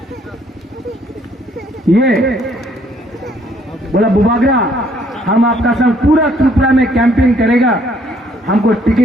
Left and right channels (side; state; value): both; normal; correlation 0.65